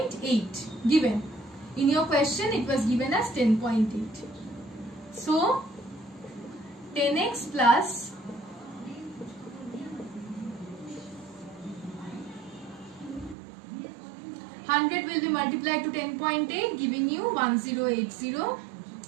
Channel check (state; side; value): drops out; left; at 13.4 s